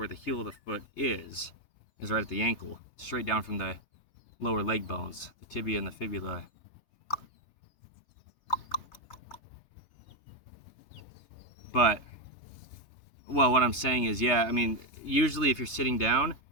the heel of the foot is right at the ankle, straight down from the lower leg bones, the tibia and the fibula. But, well, what I'm saying is, yeah, I mean, usually if you're sitting down,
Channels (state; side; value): late; right; 3.3 ms